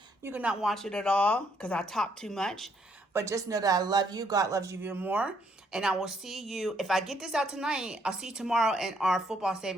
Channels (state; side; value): normal; both; correlation 0.71